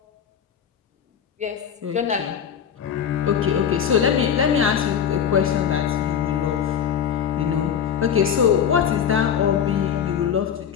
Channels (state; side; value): quieter; right; 8.2 dB